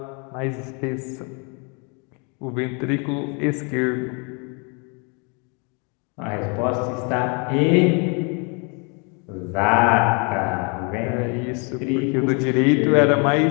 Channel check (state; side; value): quieter; right; 34.3 dB